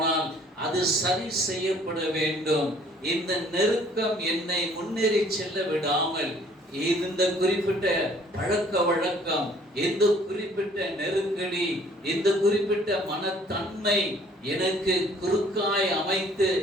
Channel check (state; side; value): normal; both; correlation 0.58